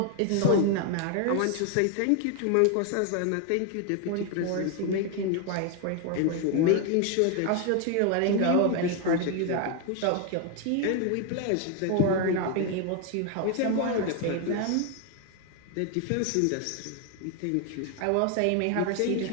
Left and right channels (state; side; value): different; both; correlation 0.01